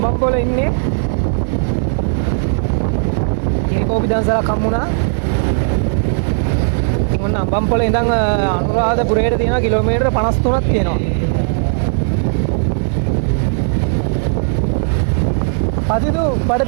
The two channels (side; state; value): left; silent; 67 dB below the other